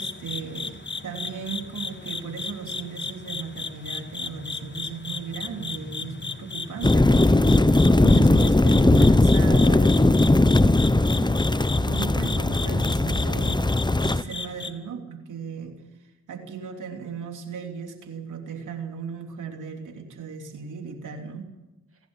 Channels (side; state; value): both; normal; correlation 0.88